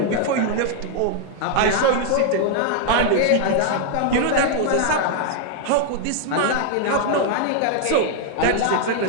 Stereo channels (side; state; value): both; different; correlation 0.00